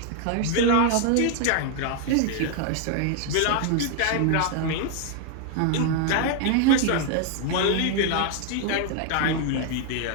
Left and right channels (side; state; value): both; different; correlation 0.00